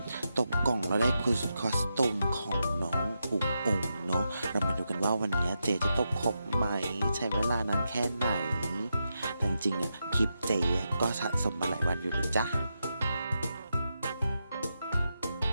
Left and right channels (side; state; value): both; inverted; correlation -0.86